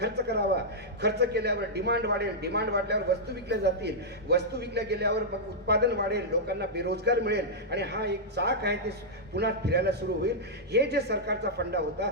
करावा. खर्च केल्यावर डिमांड वाढेल, डिमांड वाढल्यावर वस्तू विकल्या जातील, वस्तू विकल्या गेल्यावर मग उत्पादन वाढेल, लोकांना बेरोजगार मिळेल आणि हा एक चाक आहे ते पुन्हा फिरायला सुरू होईल. हे जे सरकारचा फंडा होता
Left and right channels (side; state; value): both; normal; correlation -0.08